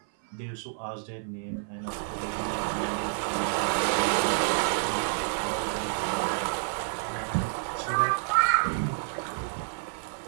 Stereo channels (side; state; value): left; silent; 55 dB below the other